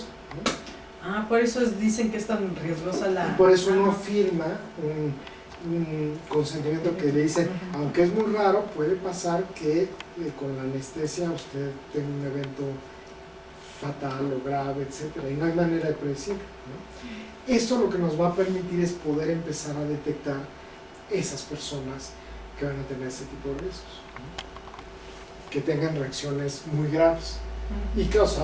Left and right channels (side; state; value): both; identical; correlation 1.00